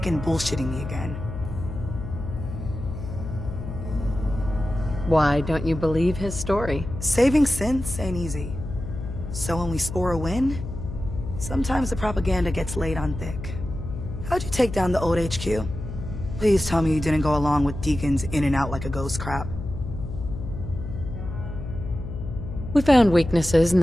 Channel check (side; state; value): left; noise; hum, 8 dB below the sound